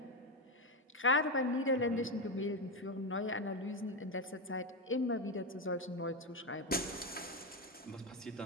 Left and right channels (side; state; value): both; normal; correlation 0.09